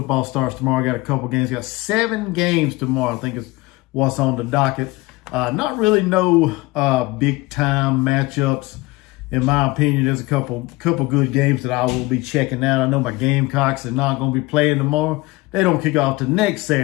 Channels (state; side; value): quieter; right; 21.7 dB